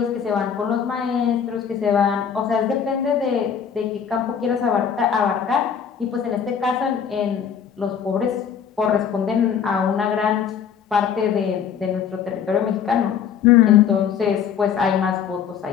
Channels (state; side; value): quieter; right; 7.7 dB